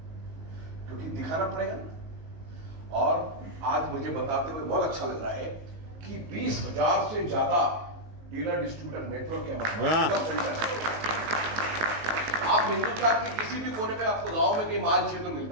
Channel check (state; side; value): late; left; 18 ms